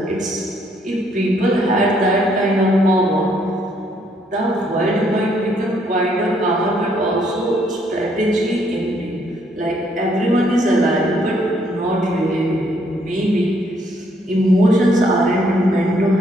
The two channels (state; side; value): normal; both; correlation 0.69